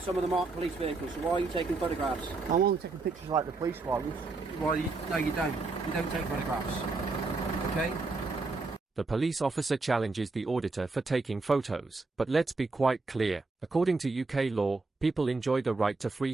some of them aren't police vehicles, so why are you taking photographs? I'm only taking pictures like the police ones. Well, no you don't. You don't take photographs. Okay? The police officer challenges the auditor for taking photos. But let's be quite clear. According to UK law, people enjoy the right to free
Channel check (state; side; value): quieter; left; 3.7 dB